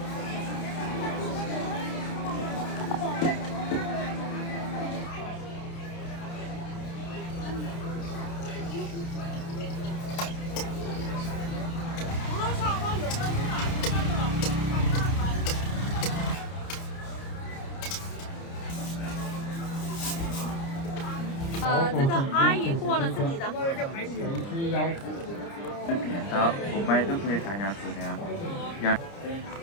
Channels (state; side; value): late; right; 30 ms